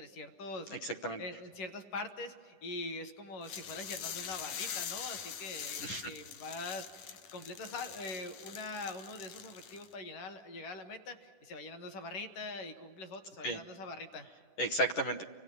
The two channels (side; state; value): right; late; 10 ms